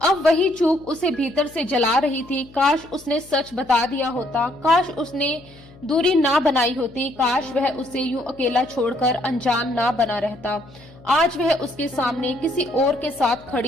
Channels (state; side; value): noise; left; hum, 23 dB below the sound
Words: अब वही चूक उसे भीतर से जला रही थी। काश उसने सच बता दिया होता, काश उसने दूरी ना बनाई होती, काश वह उसे यूं अकेला छोड़कर अनजान ना बना रहता। आज वह उसके सामने किसी और के साथ